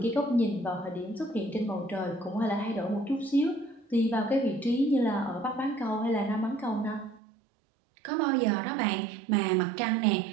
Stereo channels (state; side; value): drops out; left; at 7.2 s